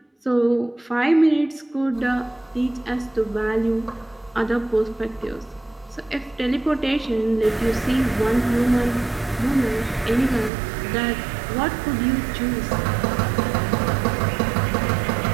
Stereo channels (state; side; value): drops out; left; at 10.5 s